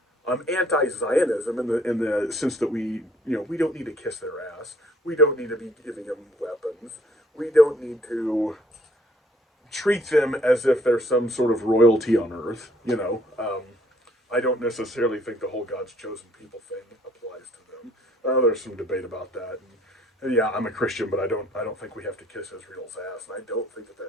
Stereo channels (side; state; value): both; normal; correlation 0.63